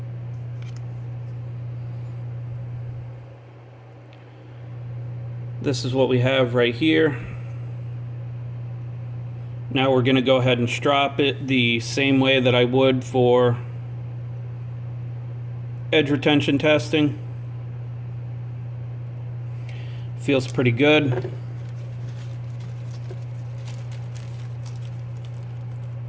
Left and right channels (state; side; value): identical; both; correlation 1.00